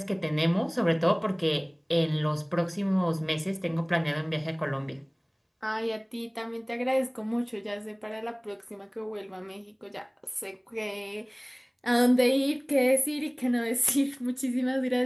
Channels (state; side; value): identical; both; correlation 1.00